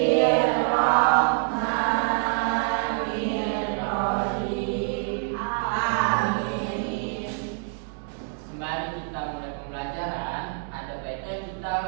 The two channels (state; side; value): silent; left; 61 dB below the other